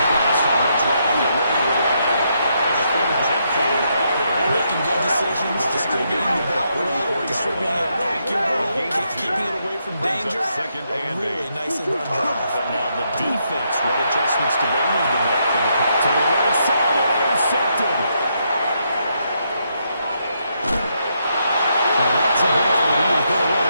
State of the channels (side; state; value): both; inverted; correlation -0.78